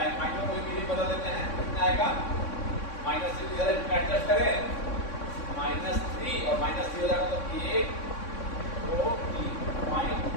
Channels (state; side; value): late; right; 3.6 ms